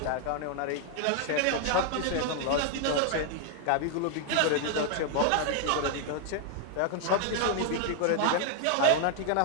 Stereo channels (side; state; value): both; different; correlation 0.00